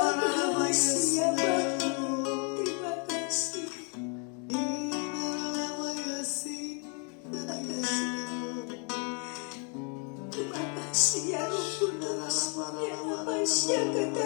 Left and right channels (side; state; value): right; quieter; 37.5 dB